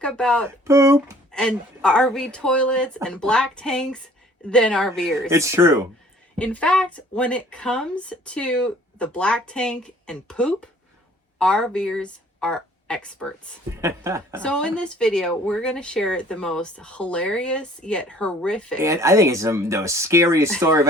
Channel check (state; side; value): normal; both; correlation 0.55